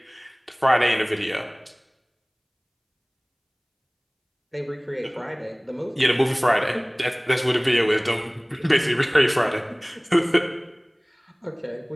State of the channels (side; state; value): both; identical; correlation 1.00